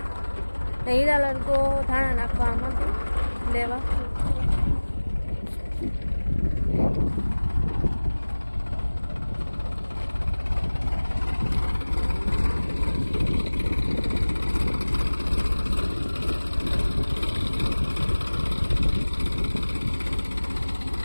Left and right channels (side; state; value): both; inverted; correlation -1.00